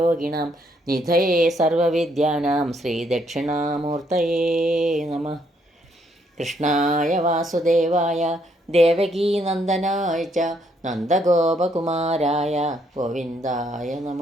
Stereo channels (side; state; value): both; normal; correlation 0.71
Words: നിധയേ സർവവിദ്യാനാം ശ്രീദക്ഷിണാമൂർത്തയേ നമഃ. കൃഷ്ണായ വാസുദേവായ ദേവകീനന്ദനായ ച നന്ദഗോപകുമാരായ ഗോവിന്ദായ